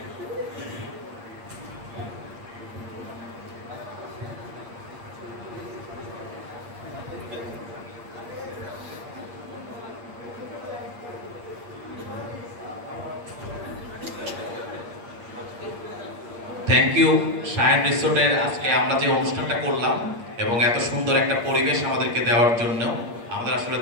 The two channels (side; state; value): left; late; 8.6 ms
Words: থ্যাংক ইউ সায়ান রিসোর্টের আজকে আমরা যে অনুষ্ঠানটা করলাম এবং এত সুন্দর একটা পরিবেশ আমাদেরকে দেওয়ার জন্য। আমাদের আসলে